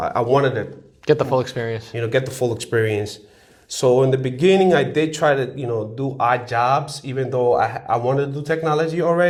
wanted to get the full experience. Get the full experience. So in the beginning, I did try to do odd jobs, even though I wanted to do technology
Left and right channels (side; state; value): both; identical; correlation 1.00